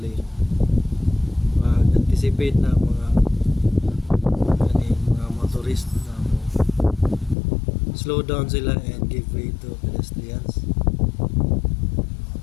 Mag-anticipate na mga motorist na slow down sila and give way to pedestrians.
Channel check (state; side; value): drops out; right; at 7.4 s